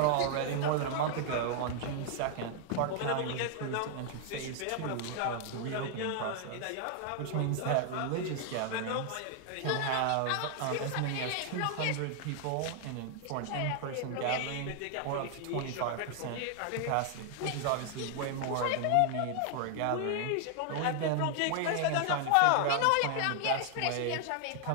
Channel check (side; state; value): both; different; correlation 0.00